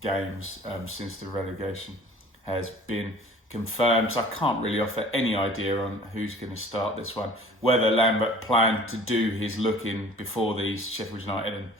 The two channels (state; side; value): normal; both; correlation 0.48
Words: games since the relegation has been confirmed. So I can't really offer any idea on who's going to start this one. Whether Lambert planned to do his looking before these Sheffield United and